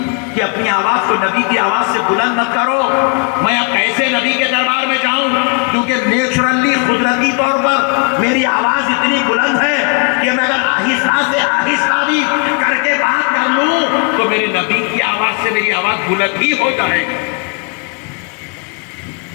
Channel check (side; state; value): right; quieter; 32.5 dB